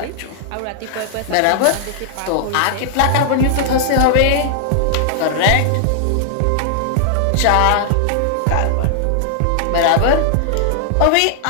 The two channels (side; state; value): both; different; correlation -0.01